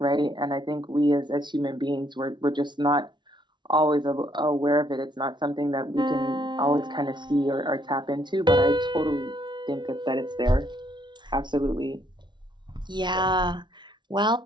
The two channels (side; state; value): left; late; 0.22 ms